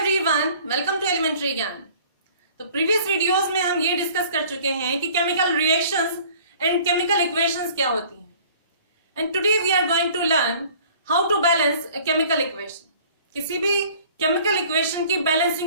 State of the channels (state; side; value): inverted; both; correlation -0.51